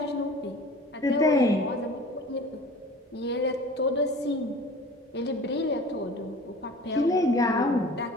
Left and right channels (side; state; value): both; normal; correlation 0.42